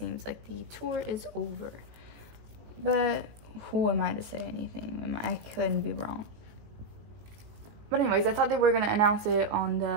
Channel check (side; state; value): left; late; 19 ms